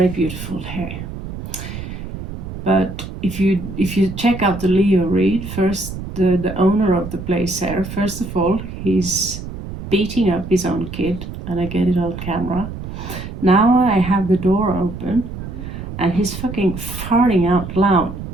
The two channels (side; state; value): right; noise; rumble, 9 dB below the sound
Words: beautiful here. But if you check out the Leo read first, the owner of the place here, first of all, he's beating up his own kid, and I get it on camera. Now I have the door open, and he's fucking farting out loud